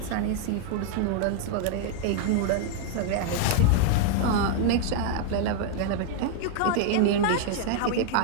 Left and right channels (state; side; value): different; both; correlation 0.00